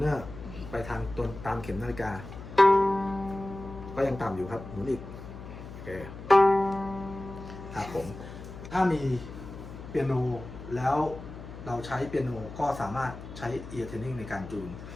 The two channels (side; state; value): left; noise; hum, 12 dB below the sound